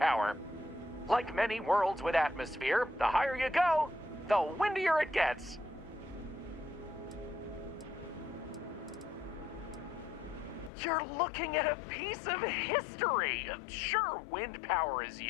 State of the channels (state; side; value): drops out; right; at 10.7 s